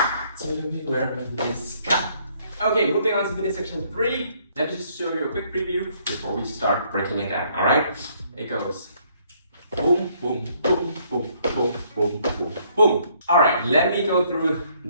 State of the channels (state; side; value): inverted; both; correlation -0.66